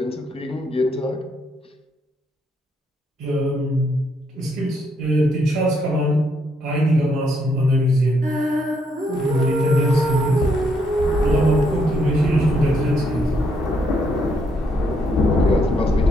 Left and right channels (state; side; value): normal; both; correlation 0.74